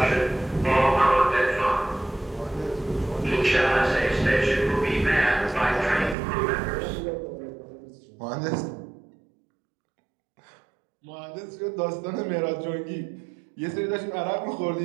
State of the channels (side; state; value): left; drops out; at 6.2 s